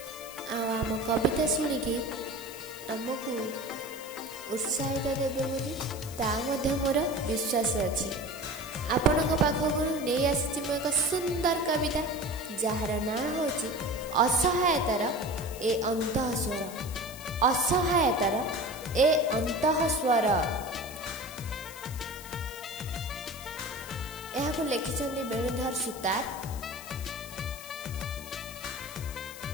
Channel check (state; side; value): noise; left; hiss, 14 dB below the sound